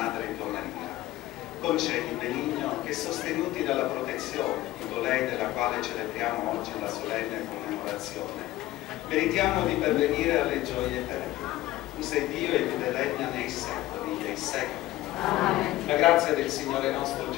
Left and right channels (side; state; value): right; quieter; 15.7 dB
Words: tua Maria. Concedi, Benigno, che sostenuti dalla protezione di colei della quale celebriamo oggi la solenne commemorazione, meritiamo di pervenire alle gioie eterne. Tu sei Dio e vive e regna nei secoli dei secoli. Amen. La grazia del Signore nostro